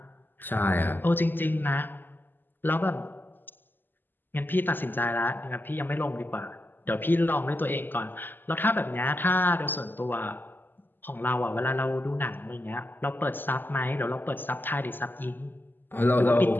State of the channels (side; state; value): right; late; 0.093 ms